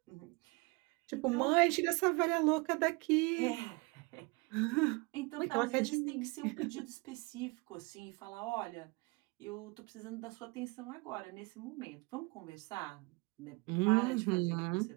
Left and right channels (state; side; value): quieter; left; 28.0 dB